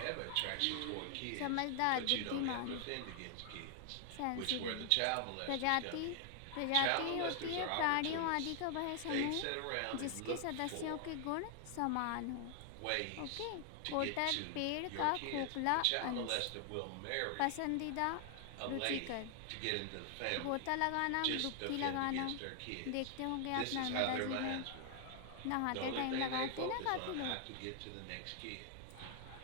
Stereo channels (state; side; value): different; both; correlation 0.00